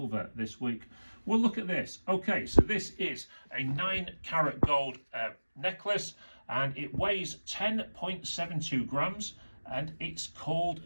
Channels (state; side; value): inverted; both; correlation -1.00